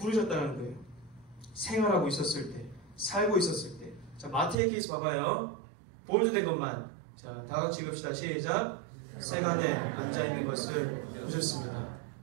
거예요. 생활하고 있었을 때, 살고 있었을 때. 자, 마태의 케이스 봐봐요. 볼드된 것만. 자, 다 같이 읽읍시다. 시작. 세간에 앉아있는 것을 보셨습니다.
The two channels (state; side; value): drops out; left; at 4.5 s